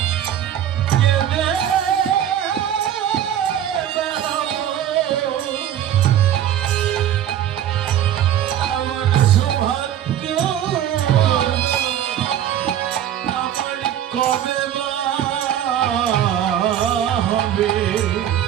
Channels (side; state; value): left; quieter; 10.6 dB